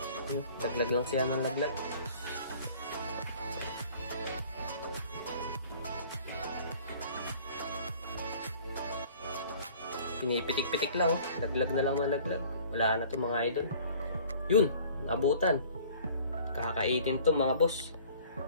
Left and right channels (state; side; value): inverted; both; correlation -0.50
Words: Laglag lang siya ng laglag. Pinipitik-pitik lang, oh. Laglag na lang ng laglag. Wala na to mga idol. Yun, abutan. Kakainin to mga boss.